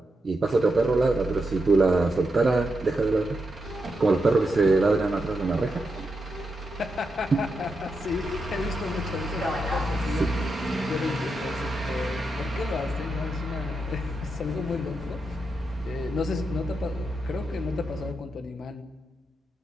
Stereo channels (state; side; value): normal; both; correlation 0.85